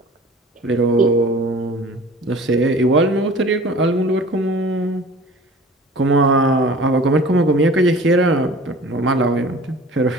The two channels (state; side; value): normal; both; correlation 0.44